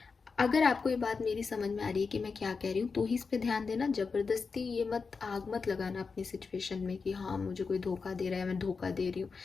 अगर आपको ये बात मेरी समझ में आ रही है कि मैं क्या कह रही हूँ, तो ही इस पे ध्यान देना। जबरदस्ती ये आग मत लगाना अपनी सिचुएशन में कि हाँ मुझे कोई धोखा दे रहा है, मैं धोखा दे रही हूँ,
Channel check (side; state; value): right; quieter; 4.9 dB